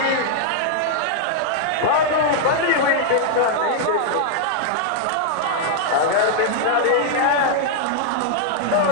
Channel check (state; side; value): different; both; correlation -0.01